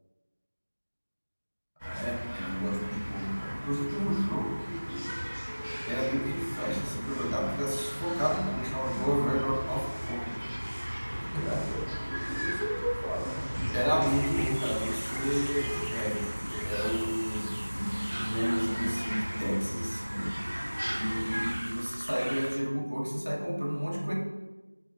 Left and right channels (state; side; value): inverted; both; correlation -1.00